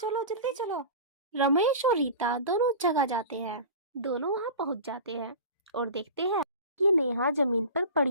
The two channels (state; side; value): inverted; both; correlation -0.33